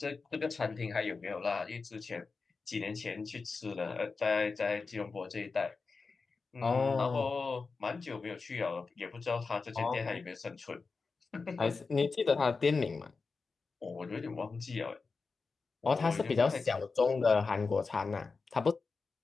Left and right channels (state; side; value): quieter; right; 4.4 dB